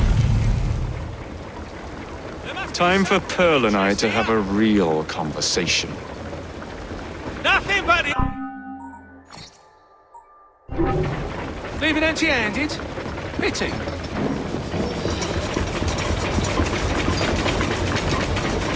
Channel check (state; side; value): identical; both; correlation 1.00